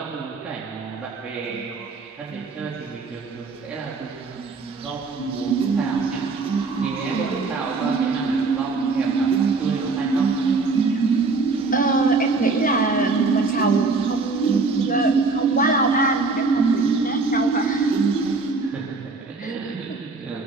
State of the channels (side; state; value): left; quieter; 4.0 dB